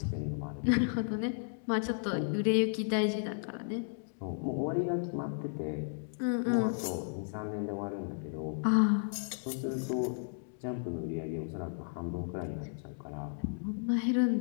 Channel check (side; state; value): right; silent; digital silence